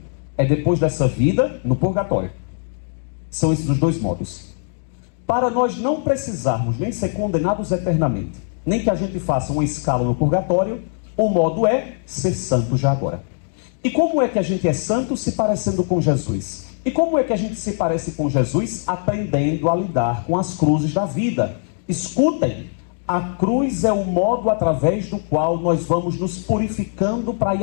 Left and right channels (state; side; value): silent; right; digital silence